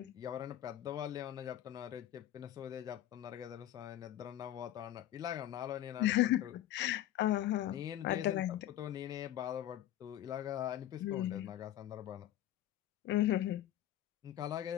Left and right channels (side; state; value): right; quieter; 12.7 dB